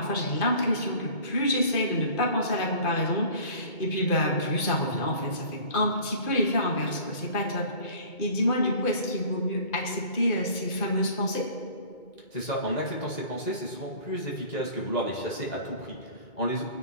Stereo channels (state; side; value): late; right; 2.2 ms